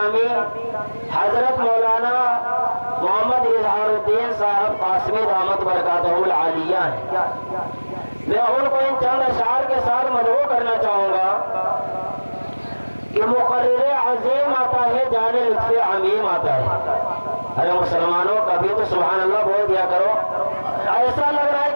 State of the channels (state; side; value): inverted; both; correlation -1.00